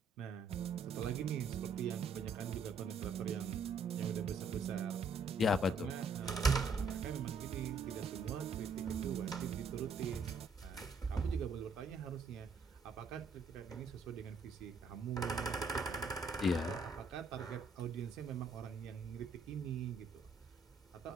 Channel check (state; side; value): quieter; left; 3.5 dB